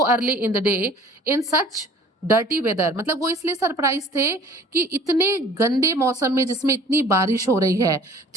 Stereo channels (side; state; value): both; normal; correlation 0.50